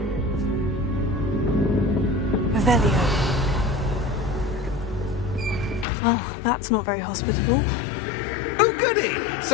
Revelio. Well, that's not very hospitable. Oh, goody!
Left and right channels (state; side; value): drops out; right; at 5.9 s